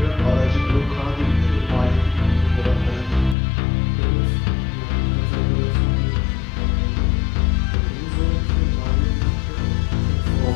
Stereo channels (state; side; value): drops out; right; at 3.4 s